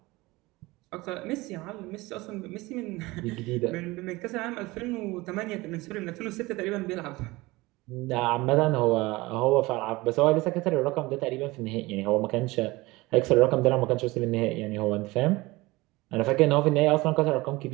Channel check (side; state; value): left; quieter; 21.3 dB